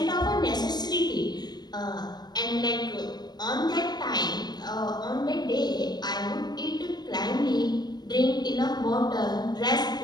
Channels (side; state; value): right; late; 0.20 ms